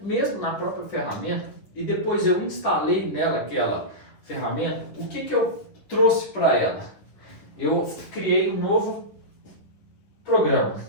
na própria ferramenta, e depois eu instalei nela aquela ferramenta, o que eu trouxe para ela? Eu criei um novo programa,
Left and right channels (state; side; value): late; right; 10 ms